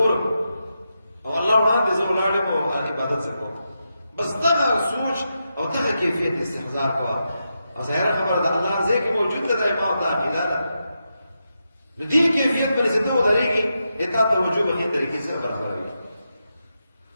او الله وړاندې زه ولاړ یم او عبادت زه کوم بس دغه سوچ او دغه کیفیت استحضار کوه او ظاهره خبره ده الله ځای کې موجود ده دا ما او تا عقیده ده نو دې کیفیت باندې چې ته ودرېږي تا توجه به ښې طریقې سره برابروي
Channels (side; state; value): both; inverted; correlation -0.86